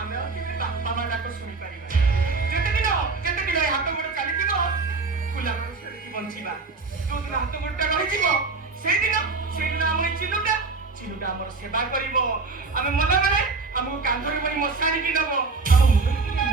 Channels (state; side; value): quieter; left; 4.0 dB